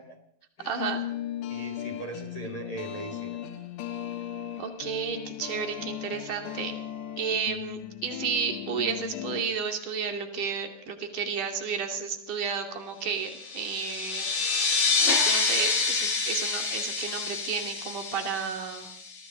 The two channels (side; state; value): right; late; 11 ms